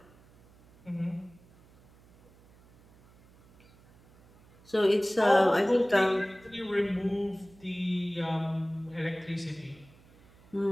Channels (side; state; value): right; noise; hum, 27 dB below the sound